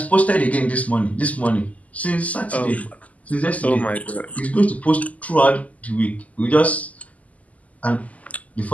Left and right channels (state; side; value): late; right; 0.073 ms